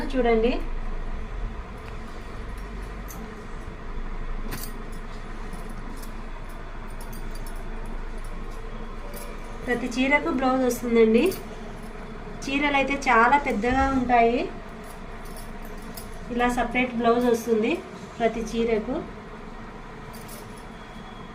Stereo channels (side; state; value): both; identical; correlation 1.00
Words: చూడండి. ప్రతి చీరకు బ్లౌజ్ వస్తుందండి. చీరలు అయితే చాలా పెద్దగా ఉంటాయి. ఇలా సపరేట్ బ్లౌజ్ వస్తుంది ప్రతి చీరకు.